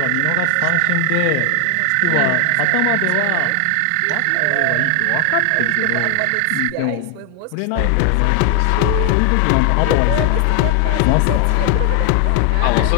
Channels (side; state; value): both; different; correlation 0.00